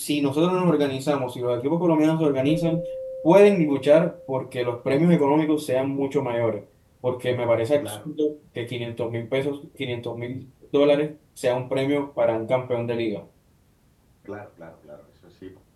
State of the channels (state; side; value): identical; both; correlation 1.00